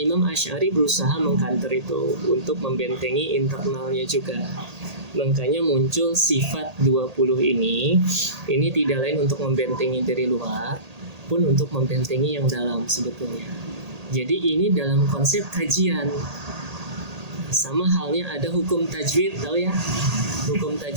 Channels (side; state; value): left; late; 1.8 ms